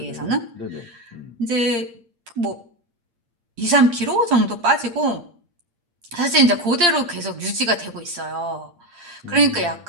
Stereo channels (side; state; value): left; late; 8.6 ms